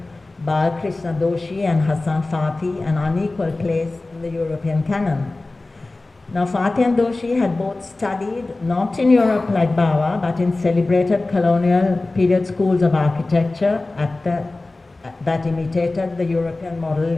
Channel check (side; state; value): right; quieter; 3.1 dB